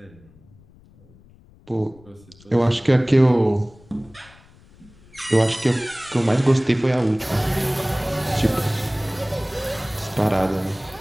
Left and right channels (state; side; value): noise; left; rumble, 26 dB below the sound